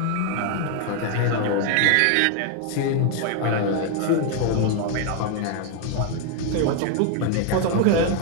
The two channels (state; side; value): different; both; correlation 0.00